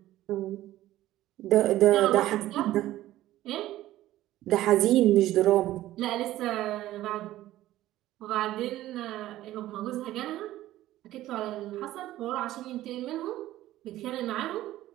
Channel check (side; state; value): left; quieter; 14.8 dB